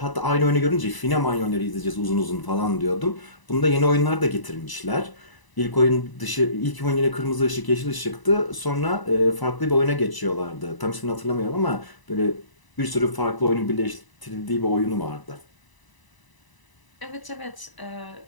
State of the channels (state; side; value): late; right; 1.0 ms